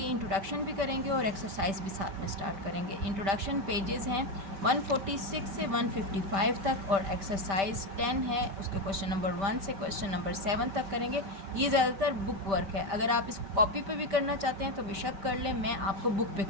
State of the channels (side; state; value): left; late; 5.1 ms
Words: इंट्रोडक्शन भी करेंगे और एक्सरसाइज भी साथ में स्टार्ट करेंगे। इंट्रोडक्शन पेजेस हैं 146 से 155 तक और एक्सरसाइज 10 है, उसके क्वेश्चन नंबर 1 से क्वेश्चन नंबर 7 तक करेंगे। ये ज़्यादातर बुक वर्क है, अगर आप इसको कॉपी पे भी करना चाहते हैं तो बेशक कर लें, मैं आपको बुक पे